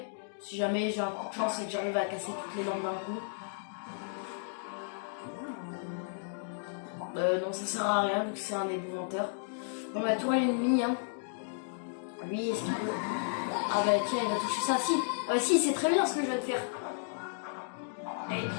Si jamais j'ai un coup de chance et que j'arrive à casser toutes les lampes d'un coup. Non, ça sert à rien vu que c'est un ébouvanteur. Bon bah toi l'ennemi hein. Lui, est-ce qu'il peut... Ah bah tiens, il va toucher ça. Si, si, c'est très bien ce que je viens de faire. Allez,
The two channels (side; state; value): right; silent; digital silence